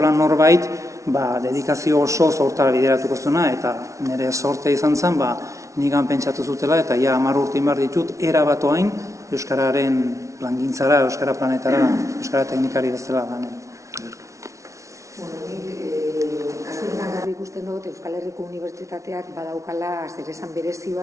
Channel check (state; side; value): late; left; 0.15 ms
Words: norbait, dedikazio oso hortara bideratuko zuena, eta nire sorte izan zen, nigan pentsatu zutela, eta 10 urte inbar ditut, erabatoain euskararen plangintzara, euskara planetara, euskara teknikari bezala ganen. Kasu honetan garbi ikusten dut, Euskal Herriko Unibertsitateak badaukala zeresan berezi